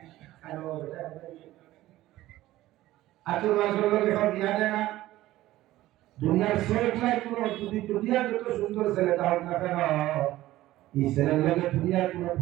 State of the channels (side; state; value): left; quieter; 15.8 dB